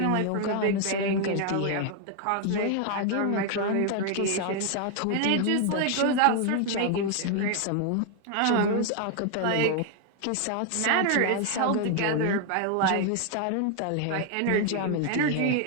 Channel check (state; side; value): different; both; correlation 0.00